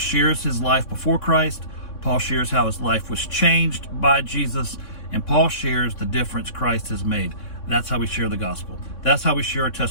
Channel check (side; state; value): right; late; 3.6 ms